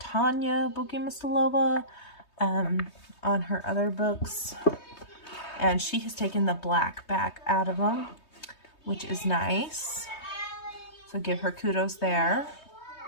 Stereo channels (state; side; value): late; right; 3.2 ms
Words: Bogomilova on her other books. And she has taken the black back out of them, which is nice. So give her kudos there.